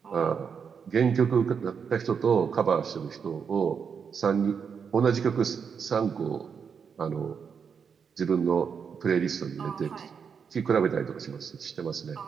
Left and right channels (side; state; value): left; quieter; 6.5 dB